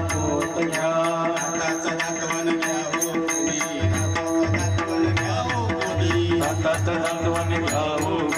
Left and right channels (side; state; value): both; identical; correlation 1.00